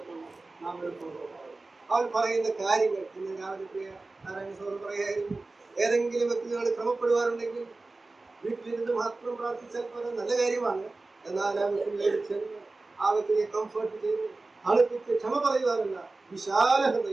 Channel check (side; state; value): left; quieter; 3.3 dB